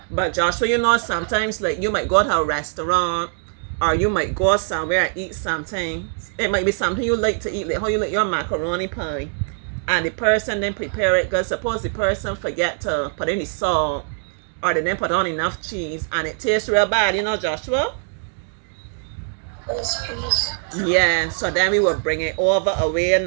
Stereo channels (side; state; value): left; silent; 60 dB below the other